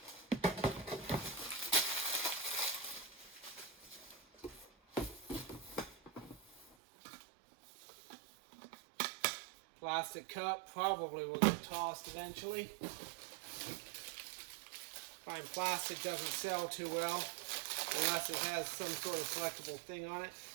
Plastic cup, probably will get tossed eventually. Find plastic doesn't sell too well unless it has some sort of collectible thing on it.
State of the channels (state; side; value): drops out; left; at 6.8 s